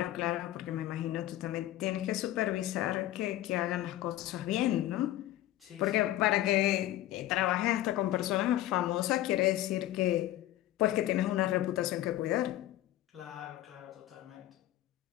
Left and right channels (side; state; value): right; quieter; 14.4 dB